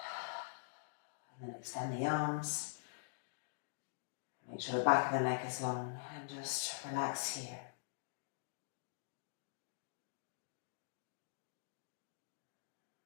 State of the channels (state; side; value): silent; right; digital silence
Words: And then extend the arms. Make sure the back of the neck is long and just relax here.